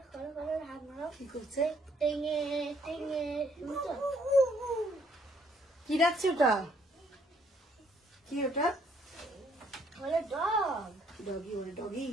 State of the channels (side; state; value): both; normal; correlation 0.67